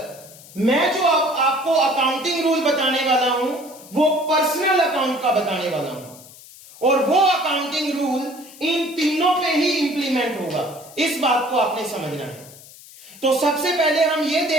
मैं जो आपको अकाउंटिंग रूल बताने वाला हूं वो पर्सनल अकाउंट का बताने वाला हूं, और वो अकाउंटिंग रूल इन तीनों पे ही इंप्लीमेंट होगा। इस बात को आपने समझना है। तो सबसे पहले हम ये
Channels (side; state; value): left; noise; hiss, 20 dB below the sound